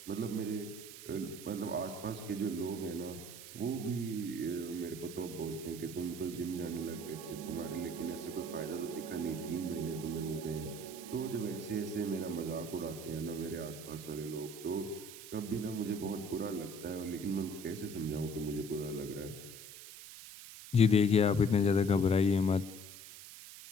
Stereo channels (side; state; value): right; noise; hiss, 13 dB below the sound